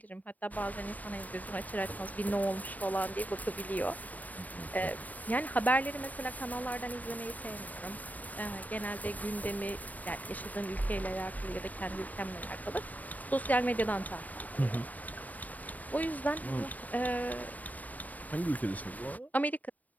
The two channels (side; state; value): right; late; 0.076 ms